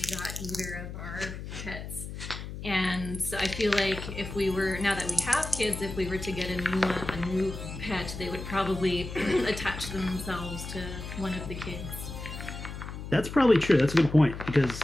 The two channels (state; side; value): noise; left; hum, 9 dB below the sound